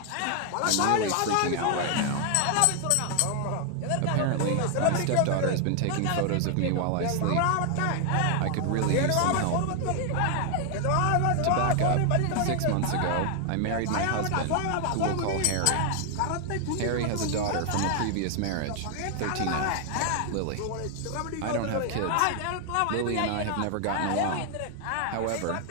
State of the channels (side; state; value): both; different; correlation 0.00